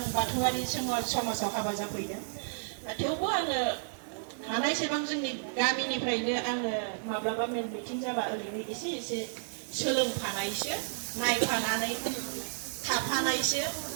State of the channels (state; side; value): silent; left; 56 dB below the other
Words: बाथौआरि समाजाव हाबा जाफैदों थेवबो आङो हानायसेबां जोंनि गामिनिफ्रायनो आङो माब्लाबा मेल मिटिं जाबा ओरैनो एसे एसे सोलोंफानायसो नायफानानै थाफानायसो